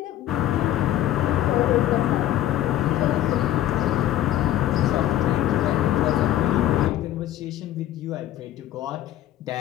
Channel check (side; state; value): right; quieter; 13.0 dB